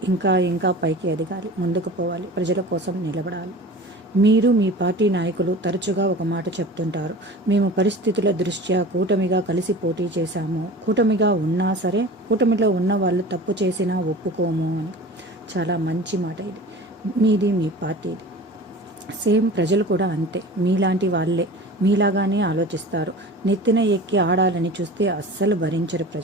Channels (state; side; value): normal; both; correlation 0.38